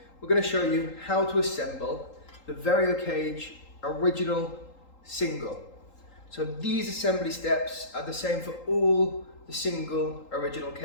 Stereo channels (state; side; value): late; right; 3.8 ms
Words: we're going to show you how to assemble the Variocage Original Single. So these assembly steps are the same for all the single original